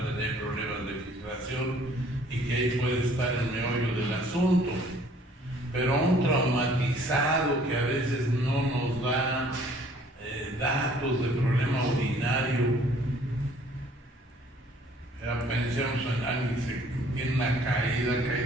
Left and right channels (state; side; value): normal; both; correlation 0.57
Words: tener problemas de filtración y que ahí puede estar el meollo del asunto. Pero un traumatizado que a veces no nos da datos de problema urinario, pensemos en alguien que tiene una caída, cae